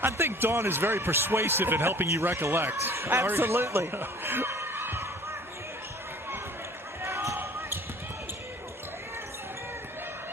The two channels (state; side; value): normal; both; correlation 0.49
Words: I think Dawn is very persuasive in helping you recollect. Absolutely.